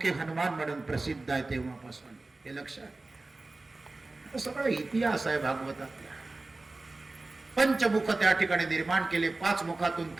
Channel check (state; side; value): quieter; left; 3.2 dB